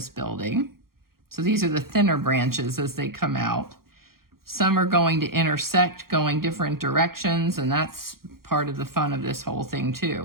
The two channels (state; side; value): late; left; 0.93 ms